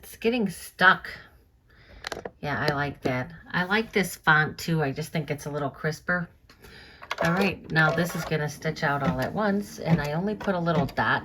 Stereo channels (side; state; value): both; identical; correlation 1.00